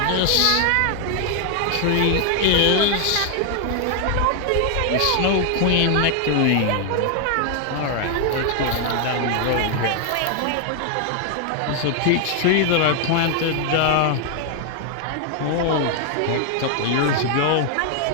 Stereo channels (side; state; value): both; different; correlation 0.00